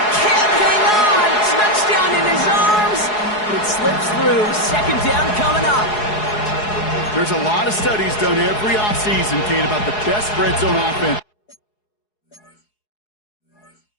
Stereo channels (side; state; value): right; late; 4.7 ms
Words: can't hang on. Touchdown in his arms. It slips through. Second down coming up. There's a lot of studies done every offseason, Kate, about the best red zone offense.